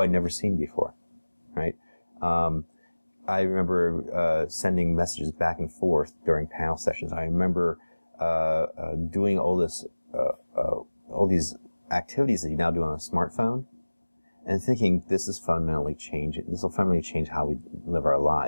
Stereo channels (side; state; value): both; inverted; correlation -1.00